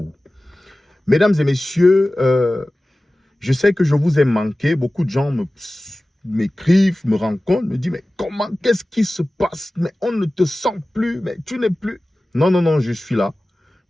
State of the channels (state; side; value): normal; both; correlation 0.97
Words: Mesdames et messieurs, je sais que je vous ai manqué. Beaucoup de gens m'écrivent, me rencontrent, me disent, mais comment, qu'est-ce qui se passe? Mais on ne te sent plus, mais tu n'es plus. Non, non, non, je suis là.